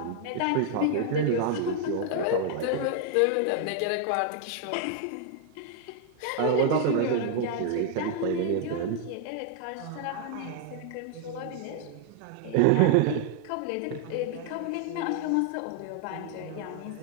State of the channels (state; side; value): different; both; correlation 0.00